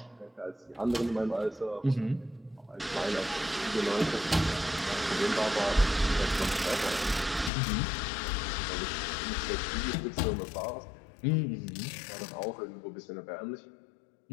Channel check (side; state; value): right; drops out; at 7.5 s